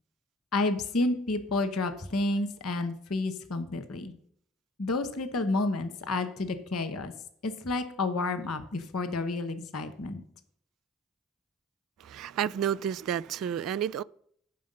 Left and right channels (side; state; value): both; normal; correlation 0.46